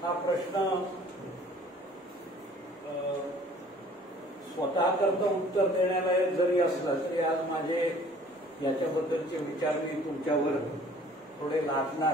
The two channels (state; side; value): normal; both; correlation 0.53